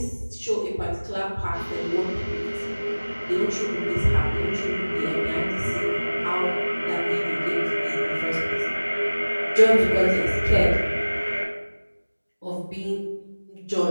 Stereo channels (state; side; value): inverted; both; correlation -1.00